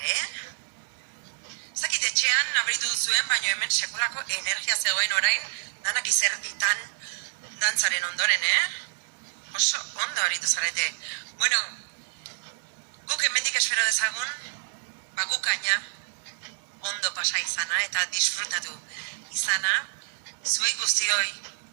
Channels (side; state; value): left; silent; digital silence